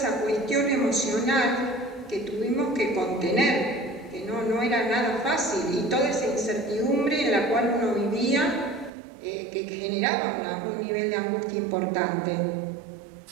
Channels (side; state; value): left; drops out; at 8.9 s